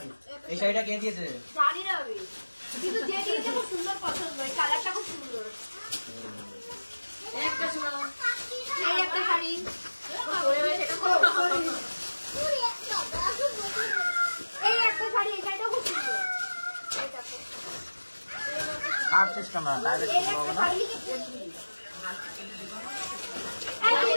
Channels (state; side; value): inverted; both; correlation -1.00